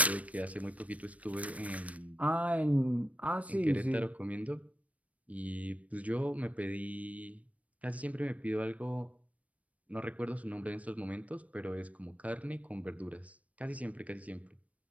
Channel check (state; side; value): late; left; 0.067 ms